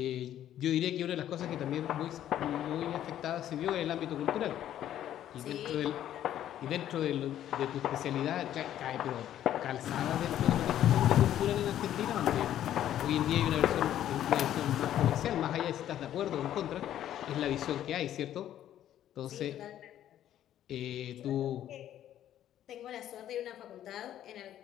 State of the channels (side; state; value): right; quieter; 11.5 dB